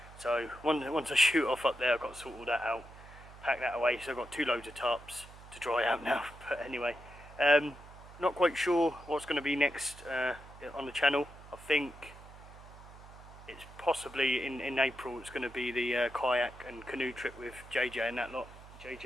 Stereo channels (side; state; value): right; noise; hum, 18 dB below the sound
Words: So once I shoot off up there, I've got to sort all that out, pack that away. So I've got 2 loads of tarps to dry out now. But anyway, not quite sure what's going to be next on the channel. I think it's possibly in April. It's going to be the kayak and canoe trip with JJ and that lot,